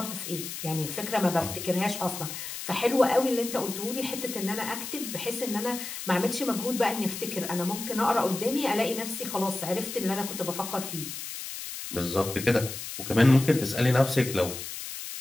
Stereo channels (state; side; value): noise; left; hiss, 8 dB below the sound